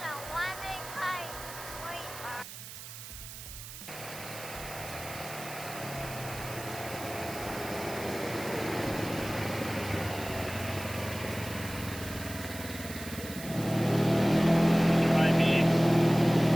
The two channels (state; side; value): noise; right; hiss, 12 dB below the sound